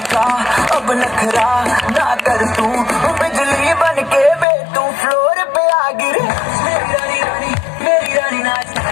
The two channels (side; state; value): right; drops out; at 4.5 s